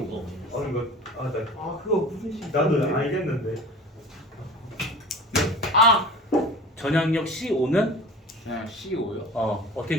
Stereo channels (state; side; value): normal; both; correlation 0.38